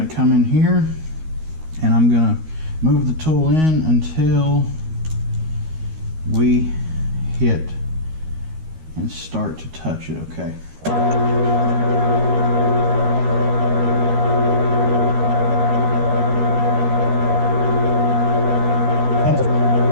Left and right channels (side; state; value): left; late; 13 ms